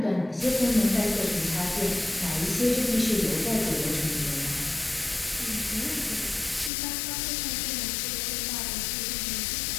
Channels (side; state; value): right; drops out; at 6.7 s